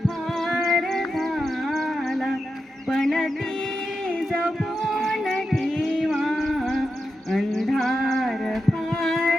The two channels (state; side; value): normal; both; correlation 0.89